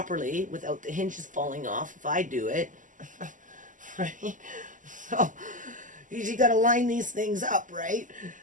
without the hinges falling off if I do it, right? So you got to line these things up, right?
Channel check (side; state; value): left; late; 0.37 ms